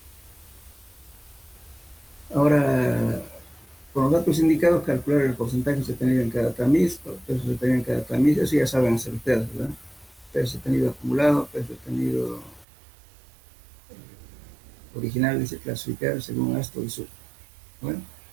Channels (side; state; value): left; drops out; at 12.7 s